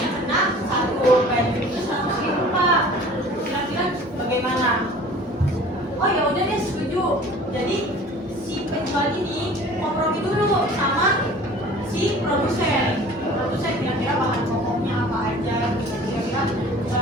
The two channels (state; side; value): normal; both; correlation 0.46